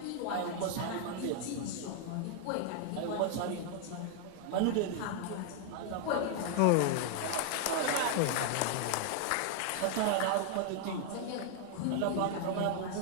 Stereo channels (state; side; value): different; both; correlation 0.00